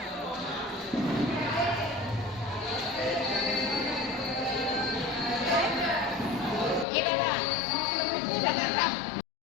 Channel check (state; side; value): drops out; right; at 6.9 s